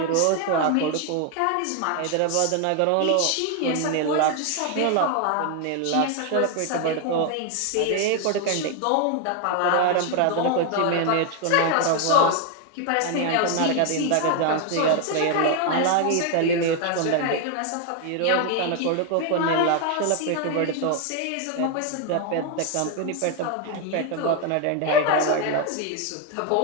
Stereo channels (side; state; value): both; different; correlation 0.01